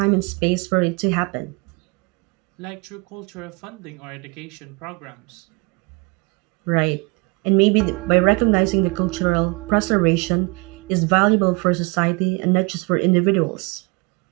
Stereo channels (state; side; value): quieter; left; 28.4 dB